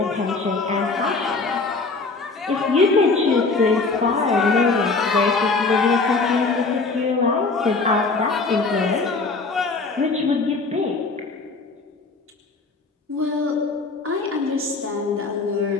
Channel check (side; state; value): right; quieter; 4.0 dB